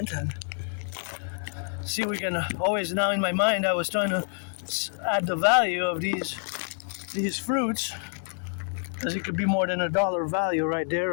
and see we can always, now in my mind I was trying to add the value of these fruits, because it could be more than $1 value right there,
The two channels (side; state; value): right; silent; 60 dB below the other